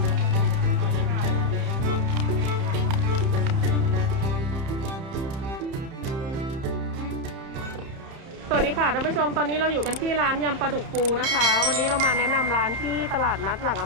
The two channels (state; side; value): late; left; 31 ms